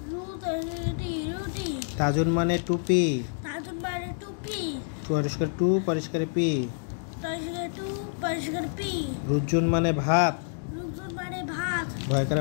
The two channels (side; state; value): right; silent; digital silence